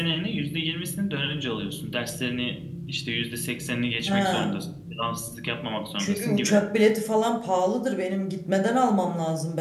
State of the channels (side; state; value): both; identical; correlation 1.00